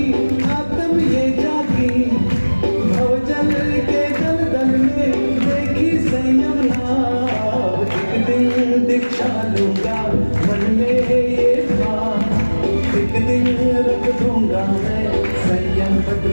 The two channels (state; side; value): inverted; both; correlation -1.00